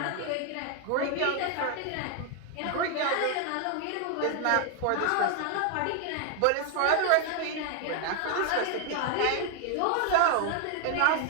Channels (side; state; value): both; different; correlation 0.00